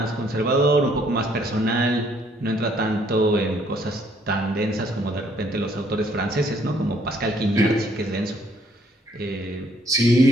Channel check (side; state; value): both; normal; correlation 0.65